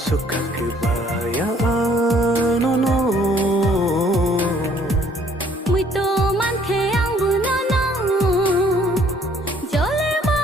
kebayaan nono mwito man ke ang bunono jole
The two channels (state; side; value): normal; both; correlation 0.61